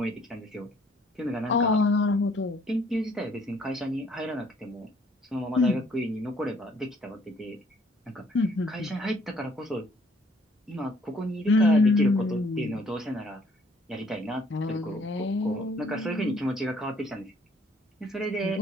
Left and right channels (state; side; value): normal; both; correlation 0.62